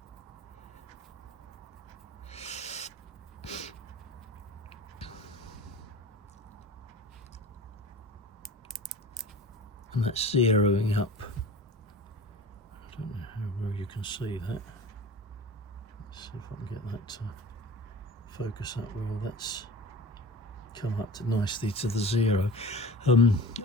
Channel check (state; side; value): normal; both; correlation 0.37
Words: And that's zeroing up. I don't know how well you can see that. Let's see if I can get that to focus up well. That's come up to nicely to the 0.